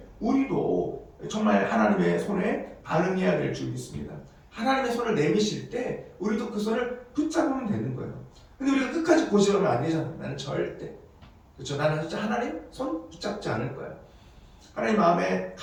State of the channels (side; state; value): both; identical; correlation 1.00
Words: 우리도 정말 하나님의 손에 반응해야 될 줄 믿습니다. 하나님의 손을 내미실 때 우리도 그 손을 붙잡으면 되는 거예요. 근데 우리가 끝까지 고집하면 안 되잖아요. 나는 절대, 그렇죠? 나는 진짜 하나님 손 붙잡지 않을 거야. 하나님 마음에